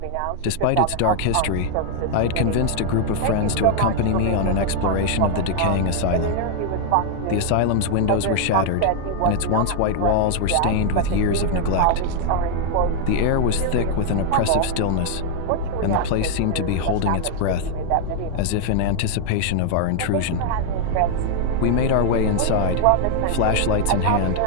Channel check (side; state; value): both; different; correlation 0.00